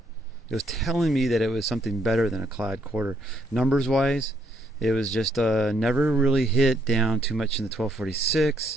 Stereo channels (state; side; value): normal; both; correlation 0.71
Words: It was telling me that it was something better than a clad quarter. Numbers wise, it was just never really hit down too much in the